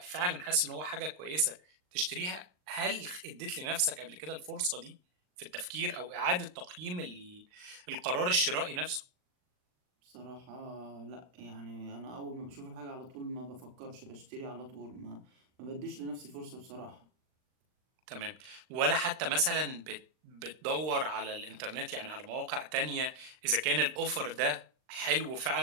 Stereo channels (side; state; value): left; late; 39 ms